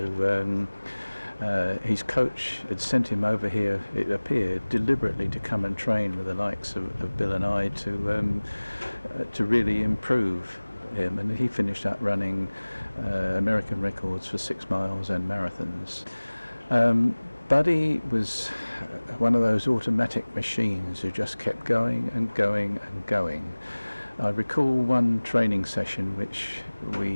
his coach had sent him over here, it appeared, deliberately to come and train with the likes of Bill and I to really improve him, and he finished up running American records for 6 miles and marathons. Buddy was one of those automatic machines who just kept going and going and going. I recall one training session which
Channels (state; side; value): inverted; both; correlation -1.00